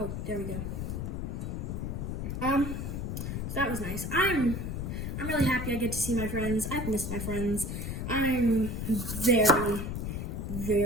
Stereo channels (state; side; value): noise; left; rumble, 3 dB below the sound